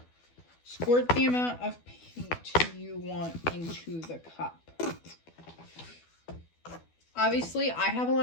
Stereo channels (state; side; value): late; right; 12 ms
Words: squirt the amount of paint you want into the cup. Obviously, I have a